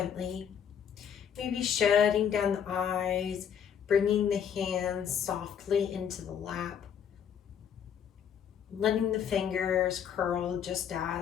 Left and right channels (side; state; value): right; quieter; 8.3 dB